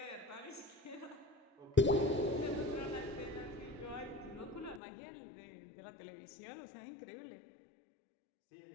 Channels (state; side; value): drops out; right; at 4.8 s